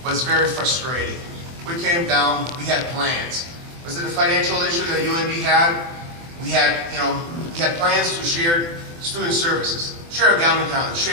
was very frustrating. We came down, we had plans. Was it a financial issue that UNB had? We had plans to share student services, share a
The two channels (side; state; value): left; late; 24 ms